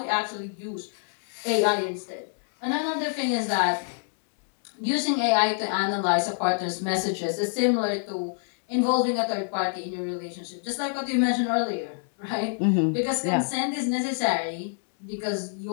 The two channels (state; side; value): silent; right; digital silence